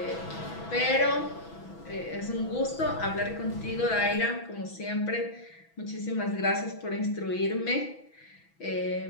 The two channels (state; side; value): late; right; 6.1 ms